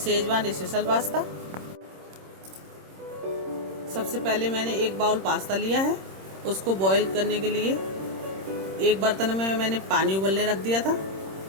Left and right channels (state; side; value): late; left; 26 ms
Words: स्पेशल पास्ता। सबसे पहले मैंने एक बाउल पास्ता लिया है। उसको बॉईल करने के लिए एक बर्तन में मैंने पानी उबलने रख दिया था।